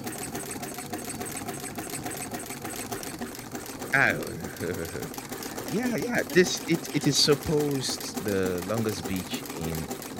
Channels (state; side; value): identical; both; correlation 1.00